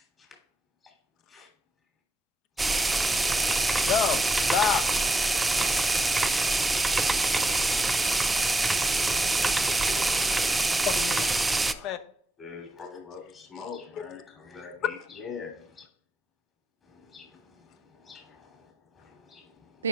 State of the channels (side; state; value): both; normal; correlation 0.84